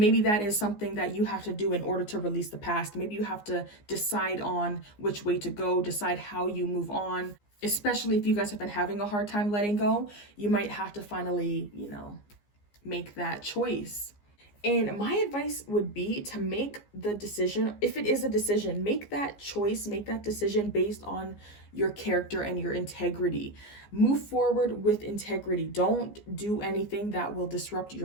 that is something that you have to do in order to release the past. Maybe you have to decide on which way to go, decide how you move on. Especially if you guys have been having a hard time letting go, you might have to finally, you know, make that choice. And my advice would be to make the decision, if it is a decision, make that choice, make that decision based on your character and your integrity. Move forward with integrity. Don't do anything that will disrupt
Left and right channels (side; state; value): right; late; 15 ms